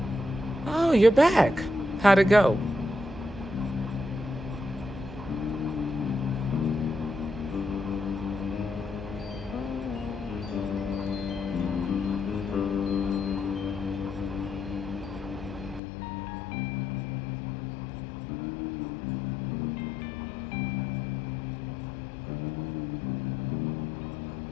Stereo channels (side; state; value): right; drops out; at 15.8 s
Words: Oh, you're back. How'd it go?